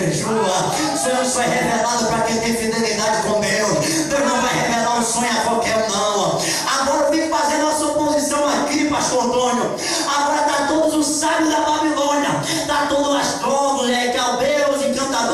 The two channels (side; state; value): both; identical; correlation 1.00